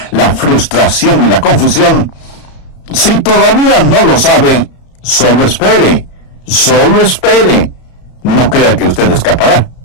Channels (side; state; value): right; late; 33 ms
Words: la frustración y la confusión? Si todavía no lo sabe, solo espere. Solo espere. No crea que usted escapará.